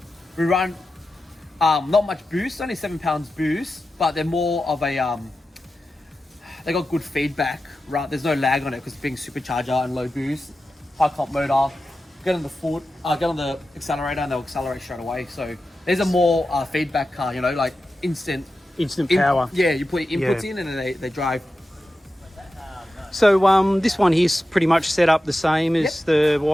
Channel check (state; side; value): normal; both; correlation 0.92